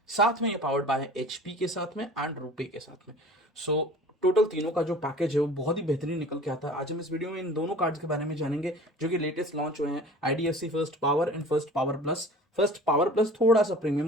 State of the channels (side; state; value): both; normal; correlation 0.43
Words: साथ में ये पावर्ड बाय एचपी के साथ में एंड रुपे के साथ में। सो टोटल तीनों का जो पैकेज है वो बहुत ही बेहतरीन निकल के आता है। आज हम इस वीडियो में इन दोनों कार्ड्स के बारे में जानेंगे जो कि लेटेस्ट लॉन्च हुए हैं, IDFC first power and first power plus. First power plus थोड़ा सा